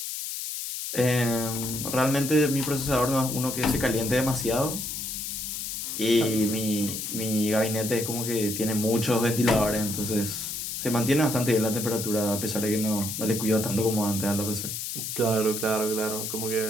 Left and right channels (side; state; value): left; noise; hiss, 5 dB below the sound